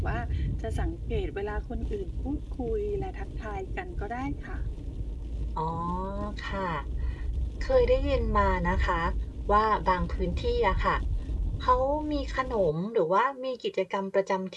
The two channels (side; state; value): both; identical; correlation 1.00